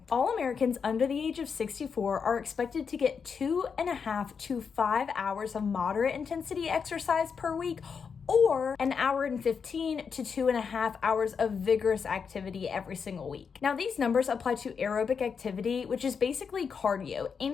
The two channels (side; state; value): right; quieter; 6.1 dB